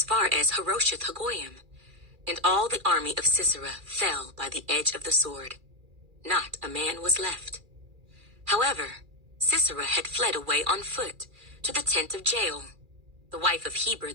far as Harosheth Hagoyim, and all the army of Sisera fell by the edge of the sword. not a man was left. However, Sisera had fled away on foot to the tent of Jael, the wife of Heber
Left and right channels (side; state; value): left; late; 2.4 ms